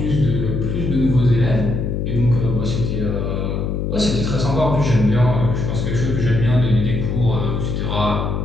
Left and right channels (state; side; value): noise; left; hum, 1 dB below the sound